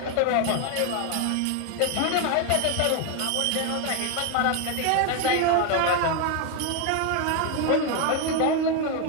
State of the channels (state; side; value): different; both; correlation 0.01